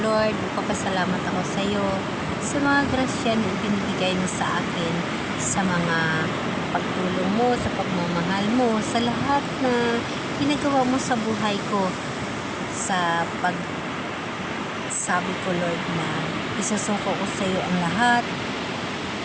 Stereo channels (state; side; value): identical; both; correlation 1.00